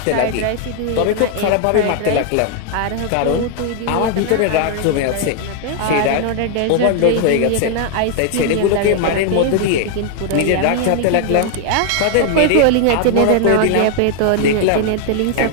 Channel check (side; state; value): both; different; correlation 0.00